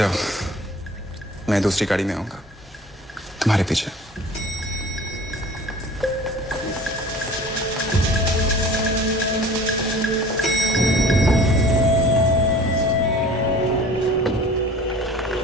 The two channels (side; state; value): both; normal; correlation 0.44